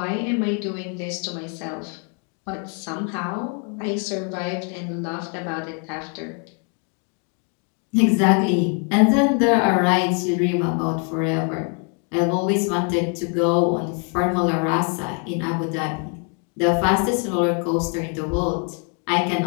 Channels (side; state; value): right; quieter; 37.8 dB